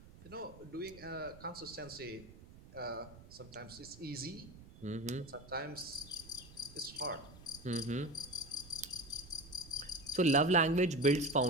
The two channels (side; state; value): right; noise; rumble, 19 dB below the sound